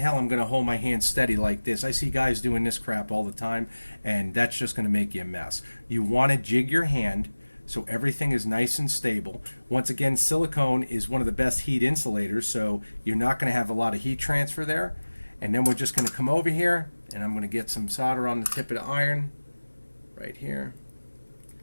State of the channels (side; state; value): both; inverted; correlation -1.00